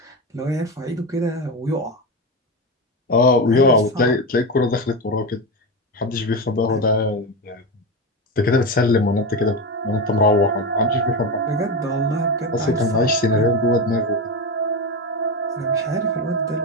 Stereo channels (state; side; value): normal; both; correlation 0.17